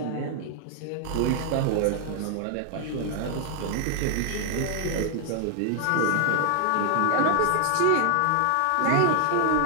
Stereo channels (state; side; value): different; both; correlation 0.00